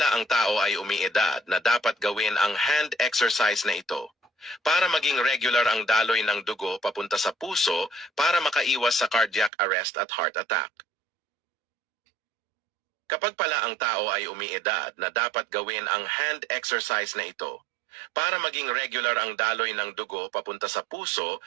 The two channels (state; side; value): drops out; left; at 9.5 s